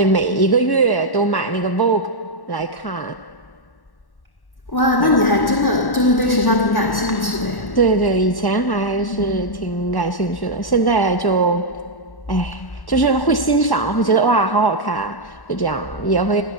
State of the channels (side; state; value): right; late; 1.1 ms